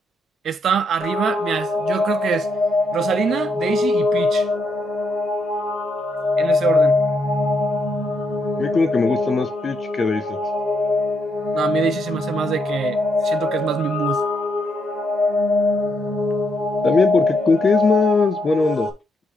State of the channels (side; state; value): both; normal; correlation 0.78